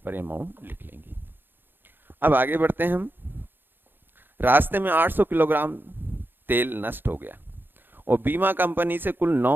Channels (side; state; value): left; late; 0.097 ms